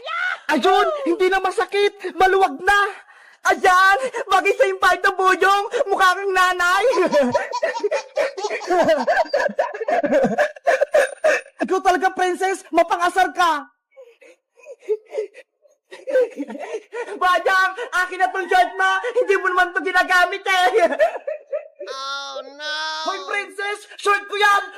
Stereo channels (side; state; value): both; identical; correlation 1.00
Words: Ayun, hindi na masakit. Maluwag na. Ayan, bagay sa yung palda, Boyong. Mukha kang nanay. Ikaw talaga, princess. Mapangasar ka. Bayang, akin na tong shirt mo. Hindi mo naman ito ginagamit eh. Oh no! Hoy, princess! Short ko